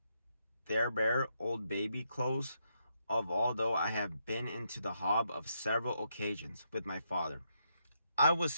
bare old baby clothes of although I have been into the hob of several occasions with my father. I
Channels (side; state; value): both; inverted; correlation -0.79